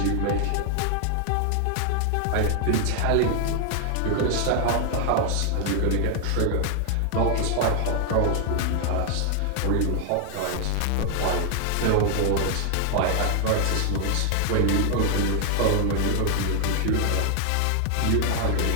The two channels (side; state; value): both; different; correlation 0.00